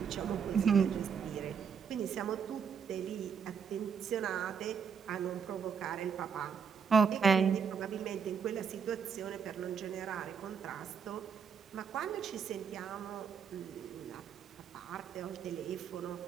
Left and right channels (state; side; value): quieter; left; 6.6 dB